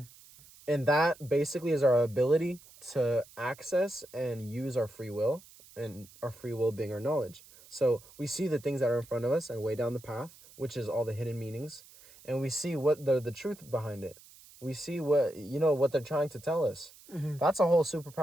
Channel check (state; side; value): noise; right; hiss, 23 dB below the sound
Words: And that basically is our ability to access and use our free will, and our free will being our knowledge. So we see the things that are in front of us and way down the path, which is all the hidden meanings, and we see what the truth behind it. We see what they're trying to tell us. Mm-hmm. That's a whole